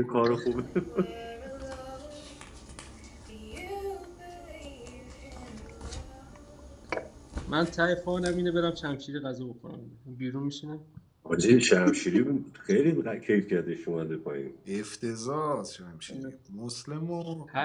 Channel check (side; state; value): both; identical; correlation 1.00